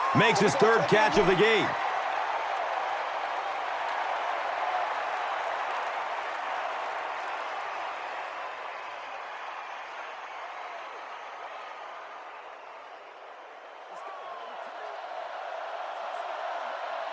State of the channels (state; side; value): identical; both; correlation 1.00